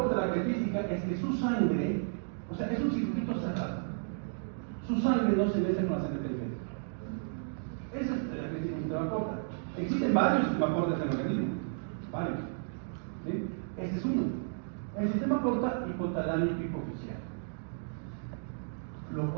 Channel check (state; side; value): silent; left; digital silence